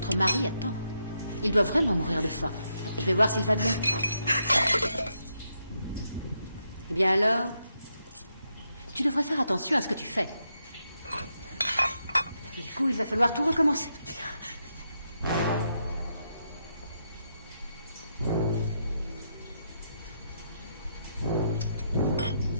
mari attend. Il doit vraiment mourir de faim. Je vais voir s'il va bien. Eh bien alors, tu devrais faire attention à ce que tu fais. Du coup, il va falloir tout recommencer.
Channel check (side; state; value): both; inverted; correlation -0.81